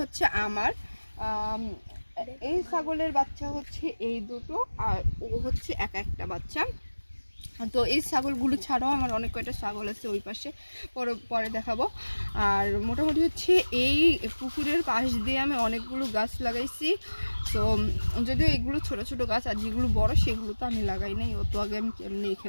হচ্ছে আমার। এই ছাগলের বাচ্চা হচ্ছে এই দুটো, আর ও হচ্ছে একটা বাচ্চা। তো এই ছাগলগুলো ছাড়াও আমার অনেক কয়টা ছাগল আছে ওই পাশে, পরে দেখাবো। আর মোটামুটি হচ্ছে এই পুকুরের পাশ দিয়ে আমি অনেকগুলো গাছ লাগাইছি। তো যদিও এগুলো ছোট ছোট গাছ, আর যেগুলো বড় সেগুলো তো আমি লাগাই নাই, ও তো আগে আমি কেমনি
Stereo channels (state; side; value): inverted; both; correlation -1.00